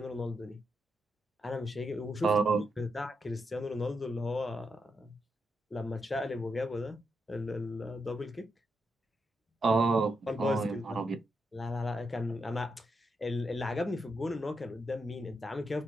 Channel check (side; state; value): both; normal; correlation 0.83